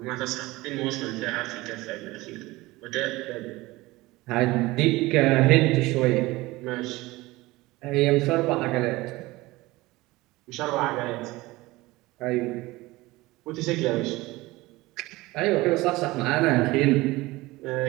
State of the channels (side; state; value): left; quieter; 20.2 dB